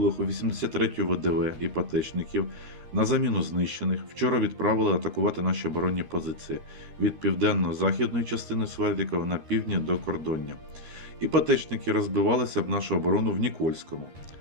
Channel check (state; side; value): late; left; 13 ms